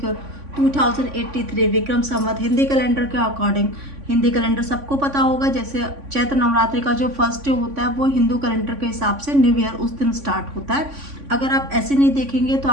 को 2083 विक्रम संवत हिंदी कैलेंडर के अकॉर्डिंग। हिंदी कैलेंडर सबको पता होगा, जैसे चैत्र नवरात्रि का जो फर्स्ट डे होता है वो हिंदू कैलेंडर के हिसाब से न्यू ईयर उस दिन स्टार्ट होता है। अगर आप ऐसे नहीं देखेंगे तो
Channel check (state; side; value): late; left; 3.5 ms